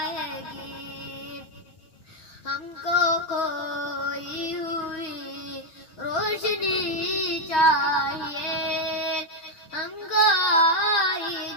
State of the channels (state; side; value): late; right; 6.3 ms